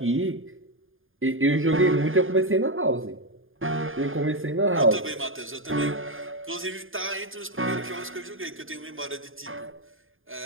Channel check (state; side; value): late; left; 0.59 ms